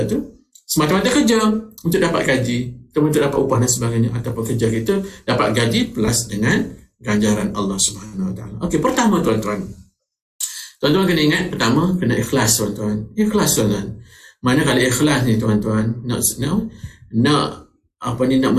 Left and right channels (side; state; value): both; identical; correlation 1.00